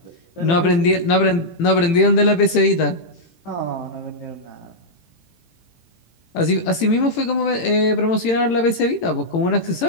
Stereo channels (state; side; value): late; right; 18 ms